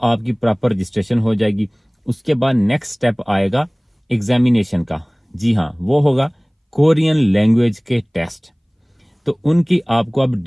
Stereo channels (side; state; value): both; identical; correlation 1.00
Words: आपकी प्रॉपर रजिस्ट्रेशन हो जाएगी। उसके बाद नेक्स्ट स्टेप आएगा एग्जामिनेशन का। जी हाँ, वो होगा कोरियन लैंग्वेज के टेस्ट। तो उनकी आपको अब